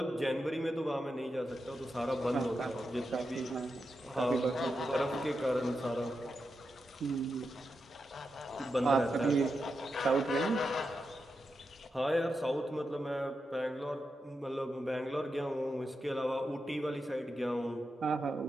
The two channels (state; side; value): normal; both; correlation 0.88